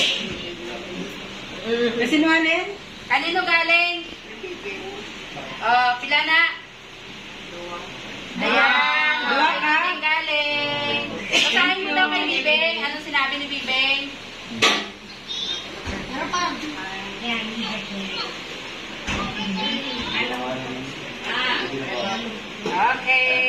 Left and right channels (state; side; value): identical; both; correlation 1.00